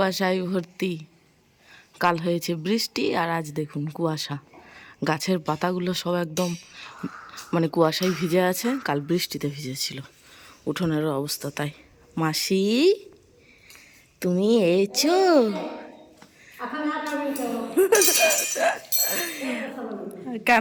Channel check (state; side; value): identical; both; correlation 1.00